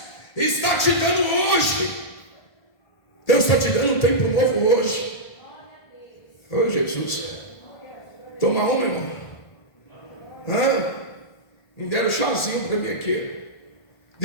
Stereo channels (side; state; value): right; late; 1.5 ms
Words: está te dando hoje. Deus está te dando um tempo novo hoje. Oh, Jesus. Toma uma, irmão. Me deram um chazinho para mim aqui.